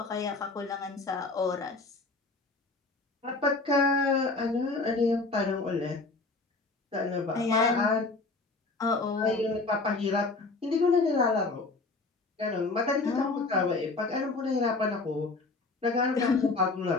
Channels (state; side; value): quieter; right; 3.6 dB